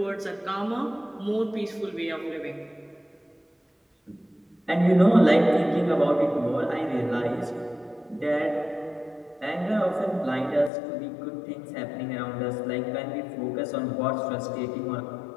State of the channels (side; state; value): right; drops out; at 10.7 s